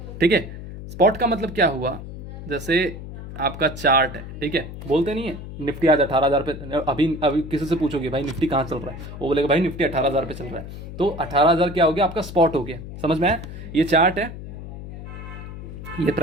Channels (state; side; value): noise; left; hum, 11 dB below the sound